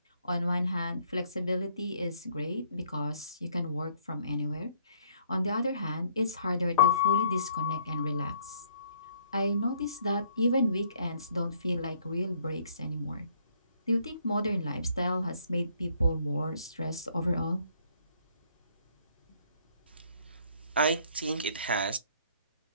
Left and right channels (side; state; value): both; inverted; correlation -0.65